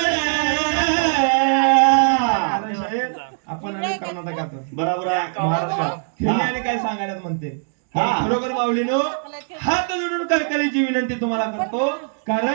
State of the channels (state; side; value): silent; left; digital silence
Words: कारण शाहीर आपण आणि कर्नाटकात, बरोबर आहे. महाराष्ट्रात खेळणे आणि काय सांगायला म्हणते. हा. खरोखर माऊलीनो, हात जोडून कळकळीची विनंती तुम्हाला करतो.